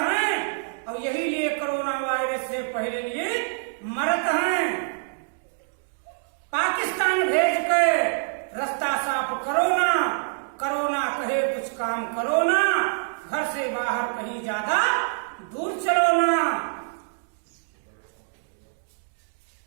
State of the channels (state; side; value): silent; left; digital silence